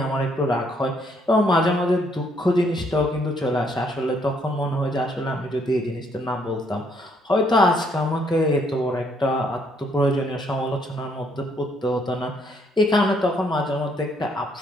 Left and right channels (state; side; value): normal; both; correlation 0.69